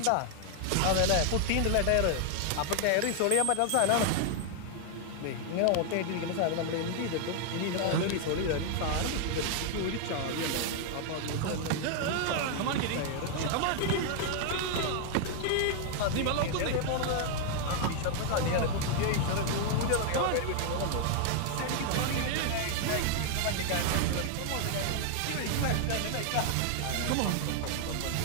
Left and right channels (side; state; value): both; different; correlation 0.00